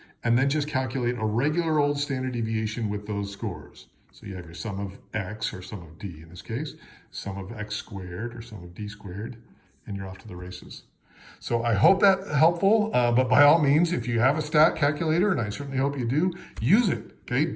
and then just calculate a regular old standard deviation with those scores. So you have your sum of x, or sum of d in this case, sum of x squared, or sum of d squared, and you're off to the races. So I hope that's helpful, but by all means, if you have a stat calculator, and I certainly hope you do, use it,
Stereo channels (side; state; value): both; identical; correlation 1.00